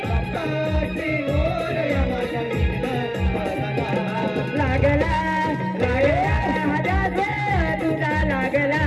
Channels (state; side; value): identical; both; correlation 1.00